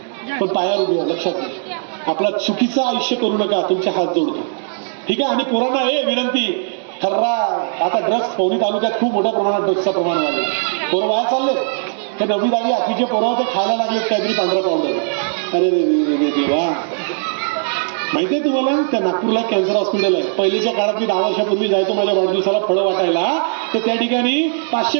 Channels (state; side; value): silent; left; digital silence